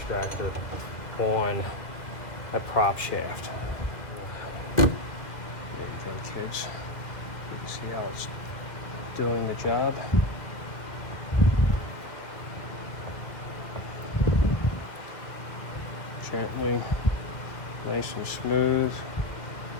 on a prop shaft. Kids, see how it's doing the job. Gently, nice and smooth.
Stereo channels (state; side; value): late; right; 1.8 ms